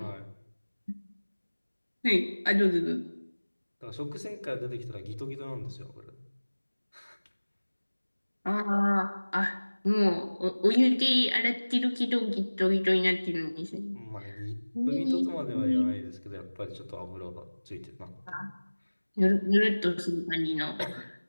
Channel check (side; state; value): both; inverted; correlation -1.00